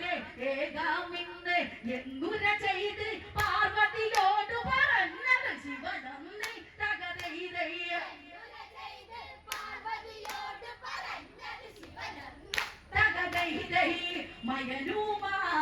ഏകാമിന്ന് എന്നുര ചെയ്ത് പാർവതിയോട് പറഞ്ഞത് ശിവനന്ദി തകതൈതയ്യ തകതൈതൈ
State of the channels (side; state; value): both; identical; correlation 1.00